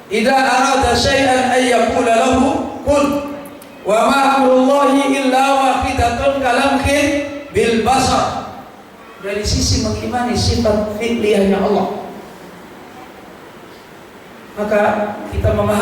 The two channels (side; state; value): both; identical; correlation 1.00